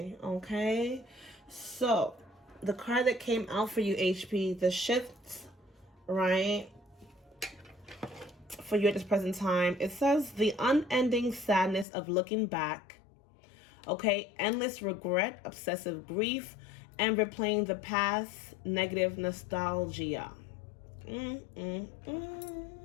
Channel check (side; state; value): right; drops out; at 11.9 s